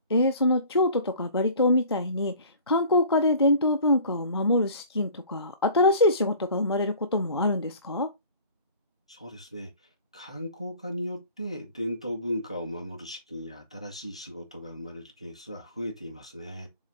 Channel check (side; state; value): both; inverted; correlation -0.46